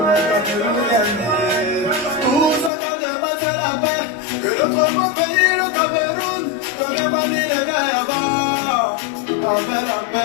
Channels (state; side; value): drops out; right; at 2.7 s